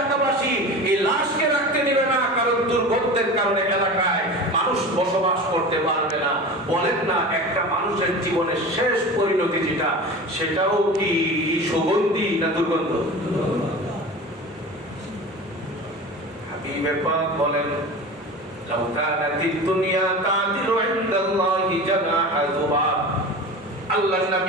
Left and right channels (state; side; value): normal; both; correlation 0.33